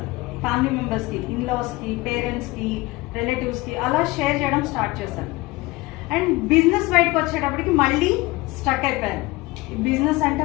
ఫ్యామిలీ మెంబర్స్ కి, ఇన్లాస్ కి, పేరెంట్స్ కి, రిలేటివ్స్ కి అలా షేర్ చేయడం స్టార్ట్ చేశాను. అండ్ బిజినెస్ బయటకు వచ్చేటప్పటికి మళ్ళీ స్టక్ అయిపోయాను. బిజినెస్ అంటే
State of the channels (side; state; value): right; quieter; 21.4 dB